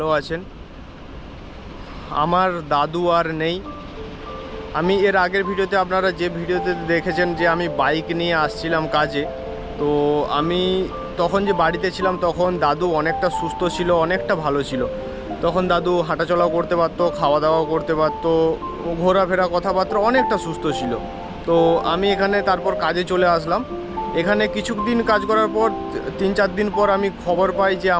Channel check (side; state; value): both; identical; correlation 1.00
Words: আছেন। আমার দাদু আর নেই। আমি এর আগের ভিডিওতে আপনারা যে ভিডিওতে দেখেছেন যে আমি বাইক নিয়ে আসছিলাম কাজে, তো আমি তখন যে বাড়িতে ছিলাম তখন দাদু অনেকটা সুস্থ ছিল, অনেকটা ভালো ছিল। তখন দাদু হাঁটাচলাও করতে পারতো, খাওয়া দাওয়াও করতে পারতো, ঘোরাফেরা কথাবার্তা অনেকটা সুস্থ ছিল। তো আমি এখানে তারপর কাজে চলে আসলাম। এখানে কিছুদিন কাজ করার পর 3-4 দিন পর আমি খবর পাই যে